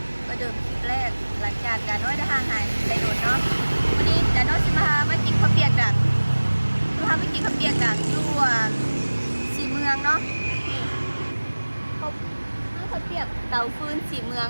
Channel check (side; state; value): both; inverted; correlation -1.00